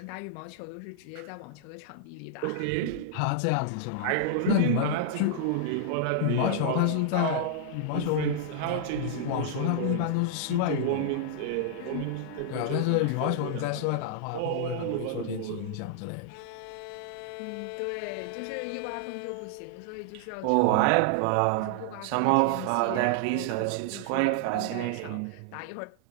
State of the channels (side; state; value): both; different; correlation -0.01